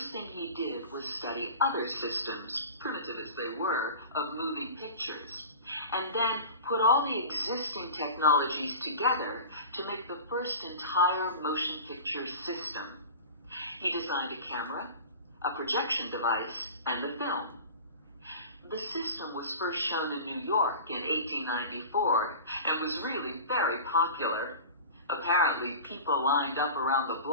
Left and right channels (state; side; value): inverted; both; correlation -0.36